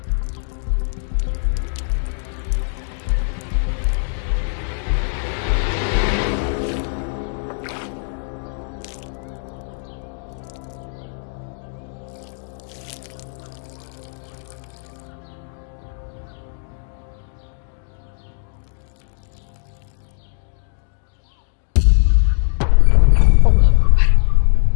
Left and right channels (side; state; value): right; silent; digital silence